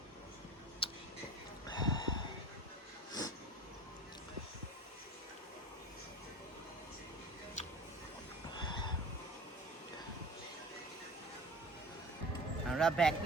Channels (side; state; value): both; normal; correlation 0.39